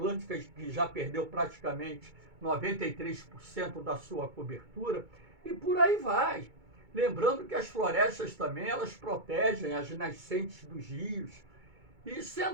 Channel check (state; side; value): late; left; 2.3 ms